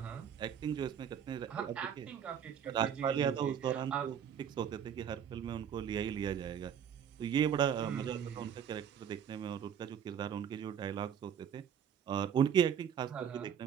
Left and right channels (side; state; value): left; quieter; 8.5 dB